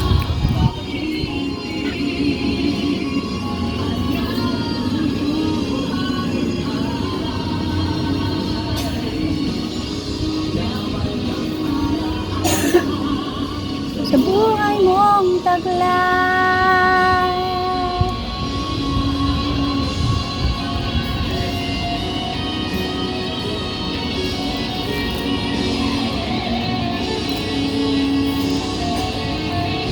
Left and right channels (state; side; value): identical; both; correlation 1.00